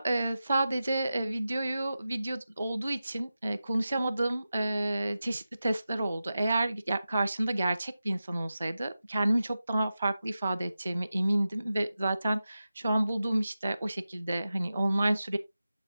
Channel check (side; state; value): both; inverted; correlation -0.93